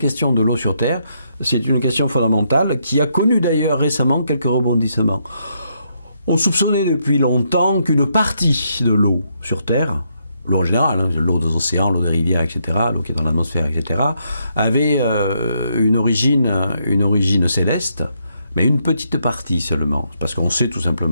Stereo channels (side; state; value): both; inverted; correlation -0.76